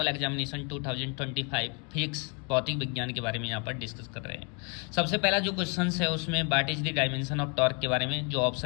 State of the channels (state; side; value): quieter; right; 35.1 dB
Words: examination 2025 physics भौतिक विज्ञान के बारे में यहाँ पर डिस्कस कर रहे हैं। सबसे पहला जो क्वेश्चन है उसमें what is the dimension of torque के बारे में, जो